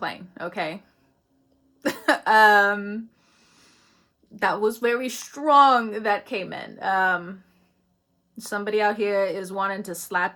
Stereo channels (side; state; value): both; identical; correlation 1.00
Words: okay? That was very strong that came in. Somebody out here is wanting to